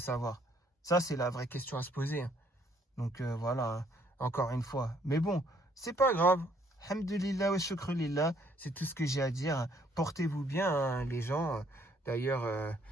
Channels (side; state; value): both; normal; correlation 0.66